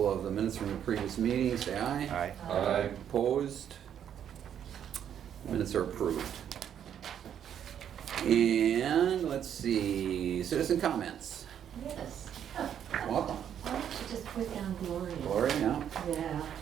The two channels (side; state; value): left; quieter; 9.3 dB